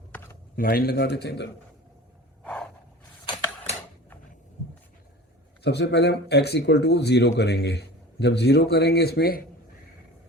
लाइन लगा देते हैं इधर। सबसे पहले हम x इक्वल टू 0 करेंगे। जब 0 करेंगे इसमें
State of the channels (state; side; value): normal; both; correlation 0.38